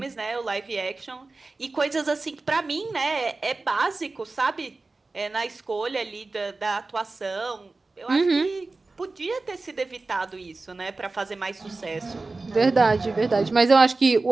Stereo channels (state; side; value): quieter; left; 3.5 dB